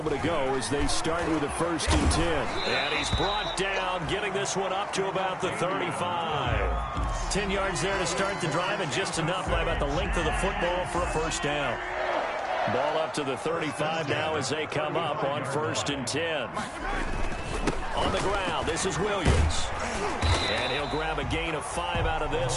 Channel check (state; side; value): identical; both; correlation 1.00